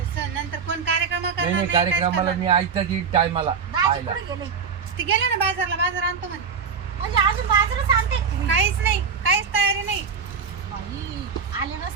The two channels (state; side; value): quieter; left; 6.0 dB